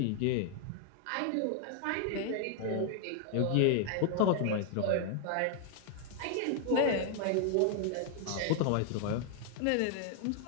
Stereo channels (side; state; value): both; different; correlation 0.00